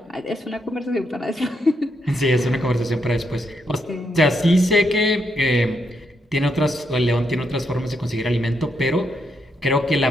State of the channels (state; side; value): normal; both; correlation 0.80